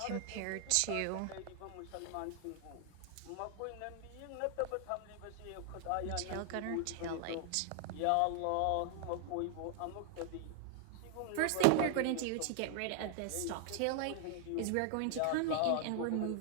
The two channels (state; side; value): different; both; correlation 0.00